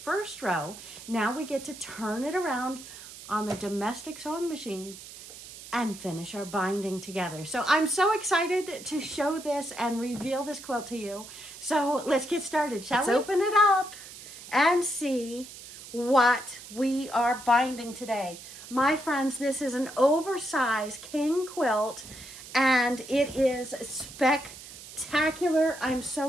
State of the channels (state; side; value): noise; right; hiss, 15 dB below the sound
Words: row. Now we get to turn it around on the domestic sewing machine and finish our binding together. So I'm so excited to show this and reveal this quilt to you. So let's get started, shall we? Let's open it up and see what we are binding today. My friends, this is an oversized king quilt and it is spectacular. I'm